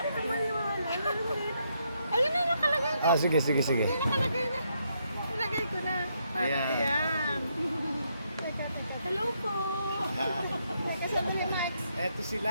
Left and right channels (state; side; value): inverted; both; correlation -0.77